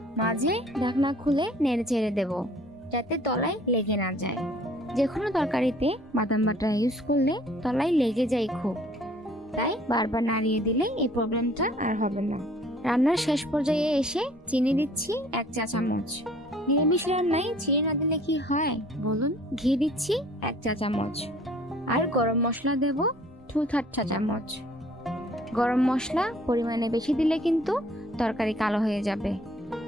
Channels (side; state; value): both; normal; correlation 0.55